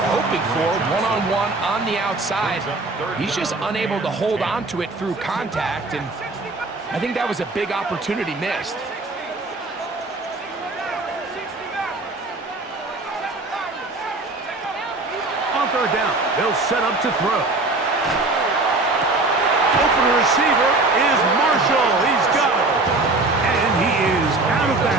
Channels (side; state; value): left; quieter; 3.2 dB